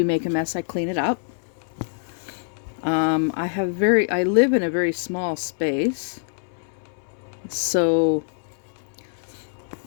make a mess, I clean it up. I live in a very small space, so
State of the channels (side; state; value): right; silent; digital silence